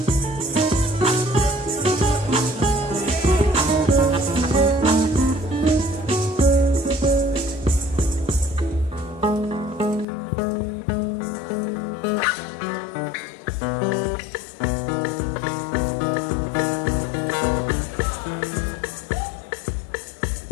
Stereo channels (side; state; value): right; drops out; at 10.1 s